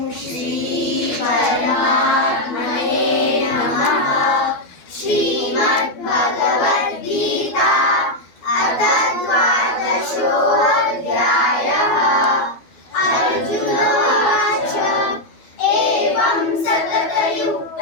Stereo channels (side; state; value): right; late; 12 ms